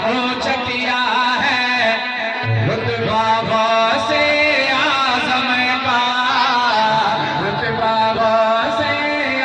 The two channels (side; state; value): both; identical; correlation 1.00